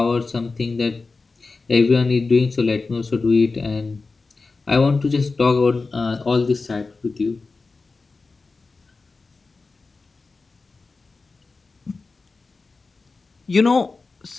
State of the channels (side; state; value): right; quieter; 4.0 dB